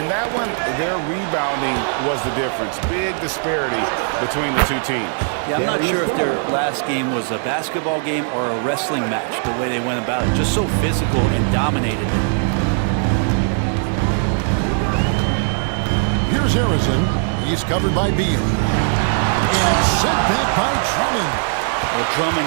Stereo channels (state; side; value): silent; left; 60 dB below the other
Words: that one, their rebounding was the difference. Big disparity between the two teams. Yeah, I'm not sure if their last game was a basketball game or a wrestling match, the way they went about it. Just so physical and dominated them. Here's Harrison. He's covered by Beal. And it's sent back by Drummond. Well,